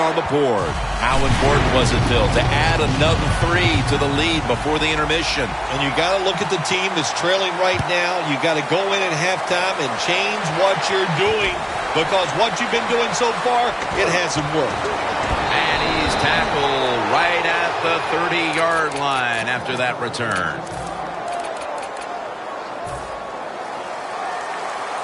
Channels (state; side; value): identical; both; correlation 1.00